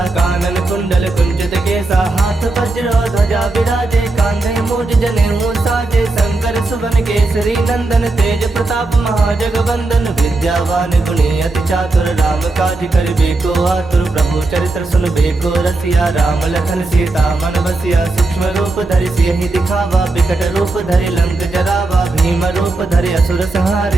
कानन कुंडल कुंचित केसा। हाथ वज्र ध्वजा विराजे, कांधे मूज जनेऊ साजे। शंकर सुवन केसरी नंदन, तेज प्रताप महाजगवंदन। विद्यावान गुणी अति चातुर, राम काज करिबे को आतुर। प्रभु चरित्र सुनबे को रसिया, राम लखन सीता मन बसिया। सूक्ष्म रूप धरि सियहि दिखावा, विकट रूप धरि लंक जरावा। भीम रूप धरि असुर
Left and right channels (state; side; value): quieter; left; 3.2 dB